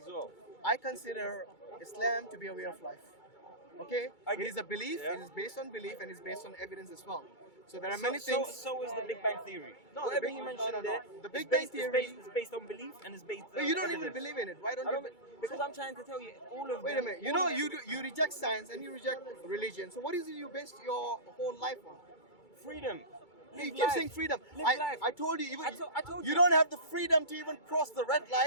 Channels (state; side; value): late; right; 2.3 ms